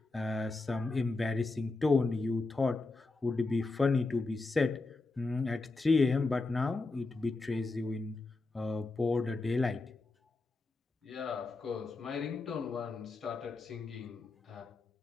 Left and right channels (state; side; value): quieter; right; 3.5 dB